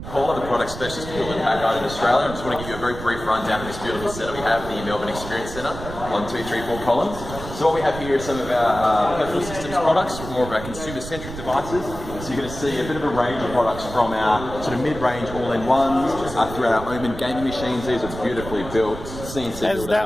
of the product specialists built in back out in Australia. I just want to give you a very brief rundown of this beautiful setup we have, the Melbourne Experience Centre on 234 Collins. So what we have here is some of our personal systems products, more of our consumer-centric devices. So you're going to see a bit of a range of products from our sort of mid-range all-in-ones through our Omen gaming machines. These are beautifully built, CNC built. Is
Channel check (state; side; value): noise; right; rumble, 10 dB below the sound